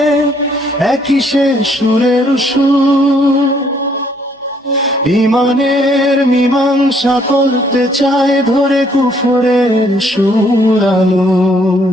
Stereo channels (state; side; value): normal; both; correlation 0.66